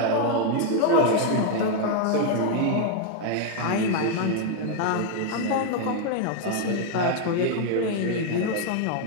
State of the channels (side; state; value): both; different; correlation 0.00